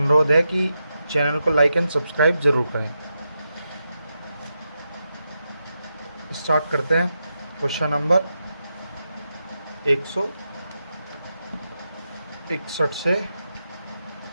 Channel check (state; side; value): inverted; both; correlation -0.87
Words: है कि चैनल को लाइक एंड सब्सक्राइब ज़रूर करें। स्टार्ट करते हैं क्वेश्चन नंबर 161 से